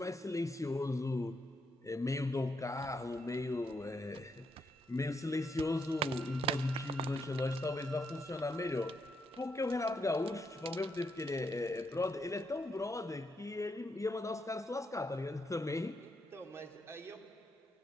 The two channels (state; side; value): normal; both; correlation 0.79